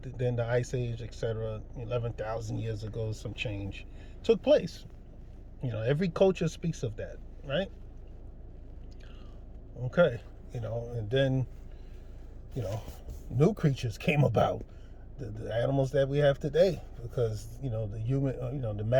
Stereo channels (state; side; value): identical; both; correlation 1.00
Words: then the ice age, etc. 11,000 years ago, some change took place. Every culture speaks of that, right? Okay, and then new creatures came about, the animals that we have today, because the human, the